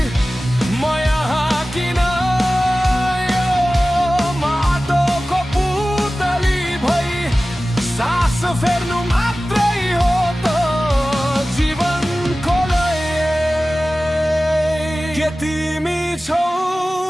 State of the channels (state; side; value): normal; both; correlation 0.96